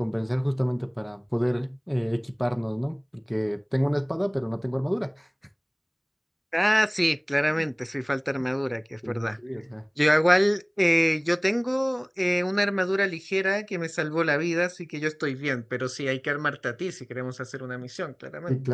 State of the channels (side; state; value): both; identical; correlation 1.00